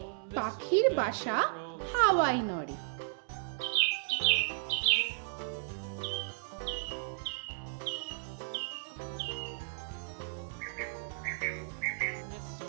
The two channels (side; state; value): left; silent; digital silence